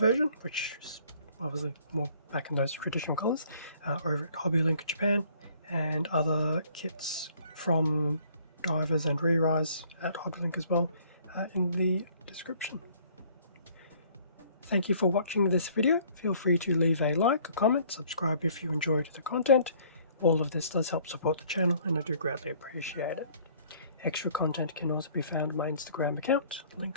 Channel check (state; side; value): inverted; both; correlation -0.58